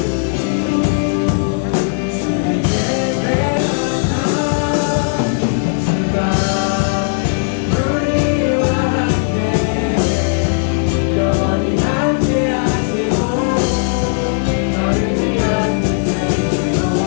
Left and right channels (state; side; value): silent; right; digital silence